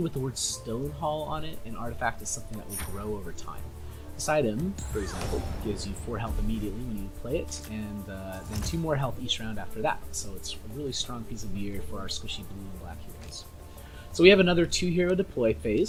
with the word Stonehall on it, an artifact is something that will grow over time. This item, for example, gives you 4 health immediately when you play it, and then 2 more health each round after that. So it's a really strong piece of gear for our squishy blue and black heroes. So we have another 2-hero deploy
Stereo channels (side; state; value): both; identical; correlation 1.00